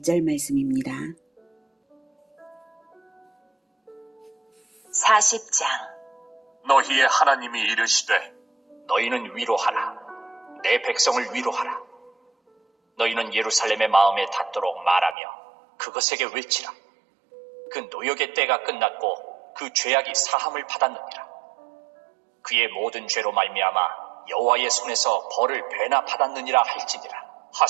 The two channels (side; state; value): left; drops out; at 15.2 s